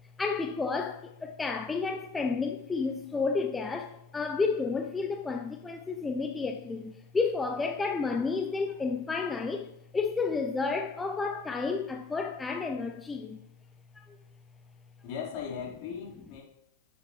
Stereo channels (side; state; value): right; quieter; 4.1 dB